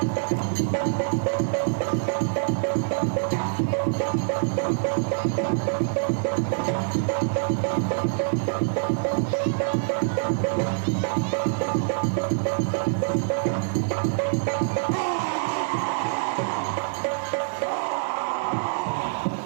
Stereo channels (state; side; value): silent; left; digital silence